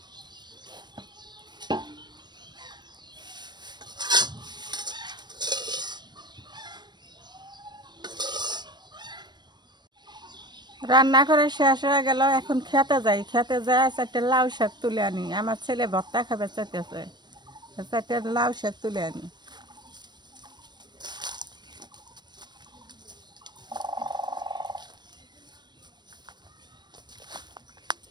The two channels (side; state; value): left; late; 0.21 ms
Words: রান্না করে শেষ হয়ে গেল, এখন খেতে যাই, খেতে যাই চারটে লাউ শাক তুলে আনি, আমার ছেলে ভর্তা খাবে চাইতেছে, চারটে লাউ শাক তুলে আনি।